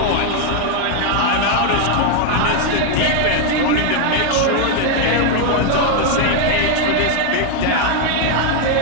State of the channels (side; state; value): both; different; correlation 0.01